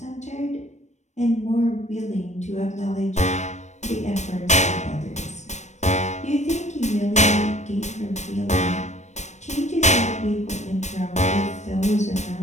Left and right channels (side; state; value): right; late; 0.34 ms